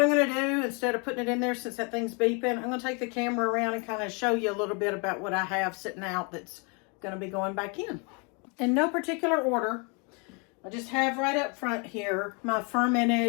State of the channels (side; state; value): right; quieter; 33.7 dB